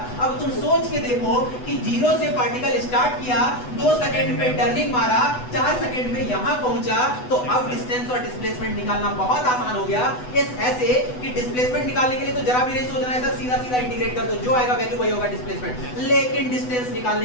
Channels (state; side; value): late; right; 8.1 ms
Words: अब तुम सोच के देखो कि 0 से पार्टिकल स्टार्ट किया, 2 सेकंड पे टर्निंग मारा, 4 सेकंड में यहां पहुंचा, तो अब डिस्टेंस और डिस्प्लेसमेंट निकालना बहुत आसान हो गया। इस ऐसे कि डिस्प्लेसमेंट निकालने के लिए तो जरा भी नहीं सोचना है सर, सीधा सीधा इंटीग्रेट कर दो, जो आएगा वैल्यू वही होगा डिस्प्लेसमेंट। लेकिन डिस्टेंस